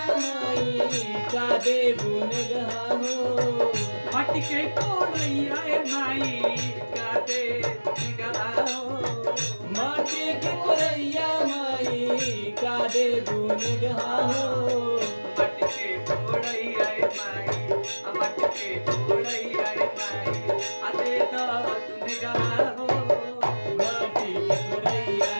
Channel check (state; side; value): inverted; both; correlation -1.00